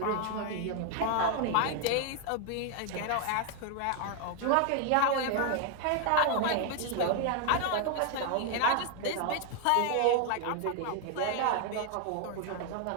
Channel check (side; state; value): both; different; correlation 0.01